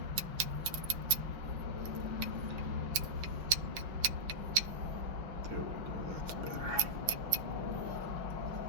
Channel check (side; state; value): left; late; 5.8 ms